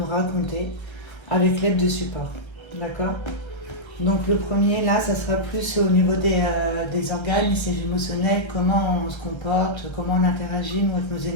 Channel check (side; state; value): right; late; 1.3 ms